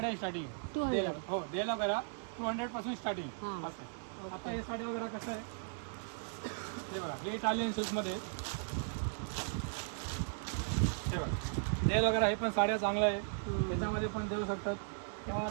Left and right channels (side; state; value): left; silent; digital silence